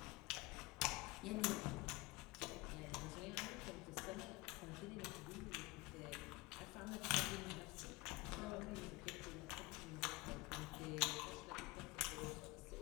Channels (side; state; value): right; quieter; 23.3 dB